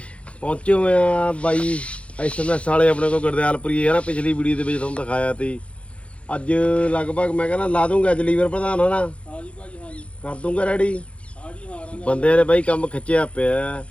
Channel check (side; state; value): right; late; 0.062 ms